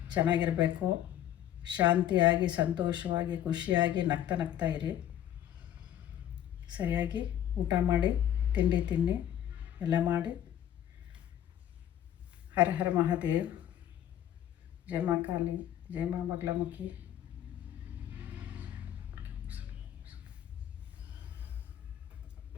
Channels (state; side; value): quieter; right; 11.1 dB